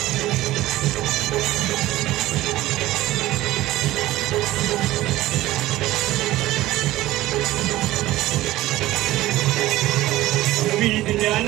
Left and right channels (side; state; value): left; quieter; 16.4 dB